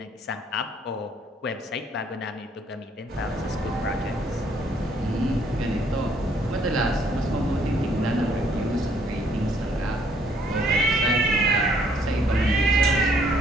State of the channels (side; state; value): both; normal; correlation 0.65